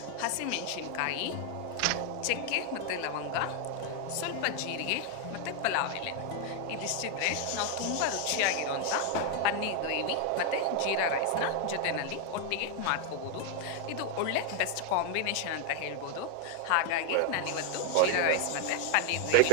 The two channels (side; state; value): both; different; correlation 0.00